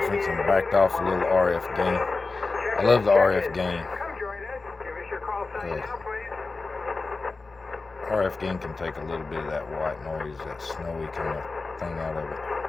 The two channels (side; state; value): right; quieter; 3.8 dB